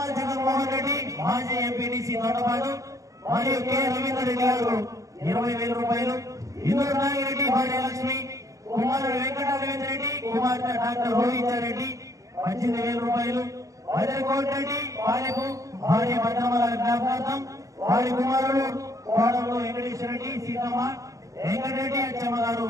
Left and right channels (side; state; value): left; late; 0.16 ms